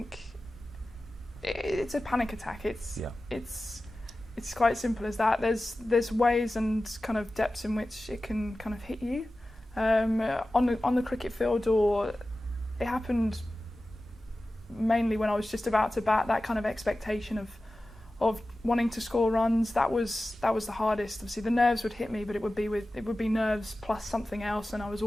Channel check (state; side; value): normal; both; correlation 0.95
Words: it's a panic attack. It's quite simple as that. There's ways and kind of depths in which it can kind of hit you on the cricket field, or it happened mainly when I was just about to bat. That kind of expectation of wanting to score runs, that was the hardest. Obviously the nerves would hit me, but it would be nerves plus something else, and I was